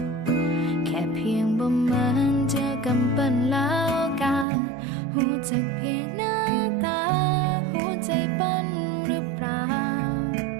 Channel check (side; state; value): left; drops out; at 4.5 s